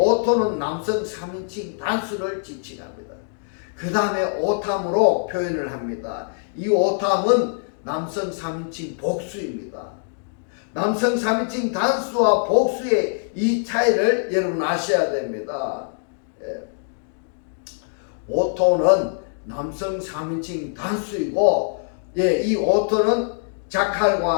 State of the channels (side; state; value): right; silent; digital silence